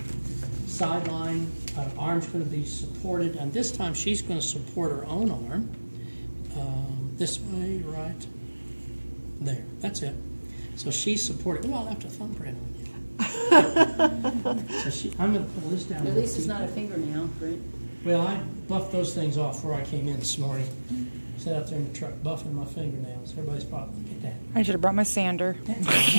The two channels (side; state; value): both; inverted; correlation -1.00